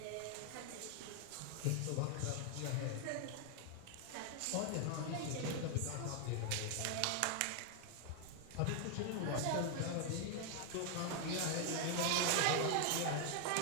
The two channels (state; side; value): different; both; correlation 0.00